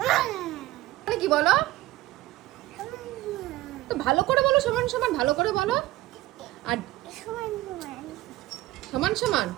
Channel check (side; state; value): left; quieter; 17.3 dB